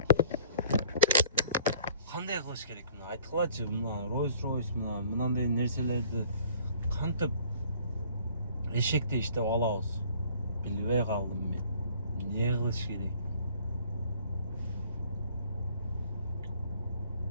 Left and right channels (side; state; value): both; inverted; correlation -0.55